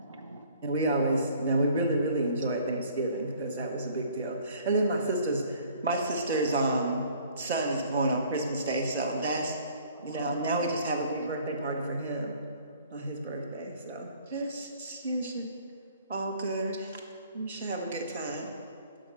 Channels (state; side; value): inverted; both; correlation -0.55